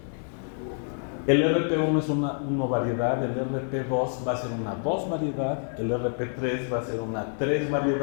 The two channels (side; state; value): right; silent; 56 dB below the other